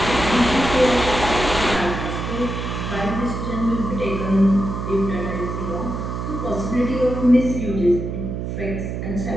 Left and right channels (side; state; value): right; noise; hum, 4 dB below the sound